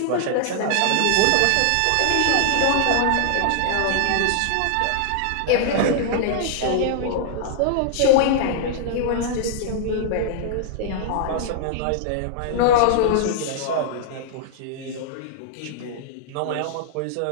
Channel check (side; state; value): both; different; correlation -0.01